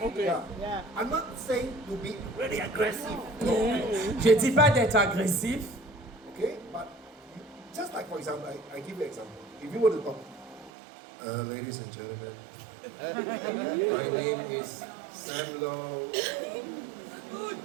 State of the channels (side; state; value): left; drops out; at 10.7 s